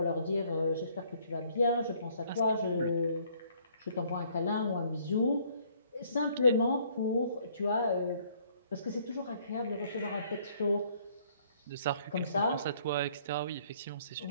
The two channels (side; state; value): both; inverted; correlation -0.63